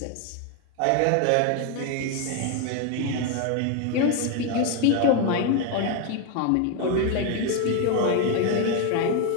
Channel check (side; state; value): both; different; correlation 0.01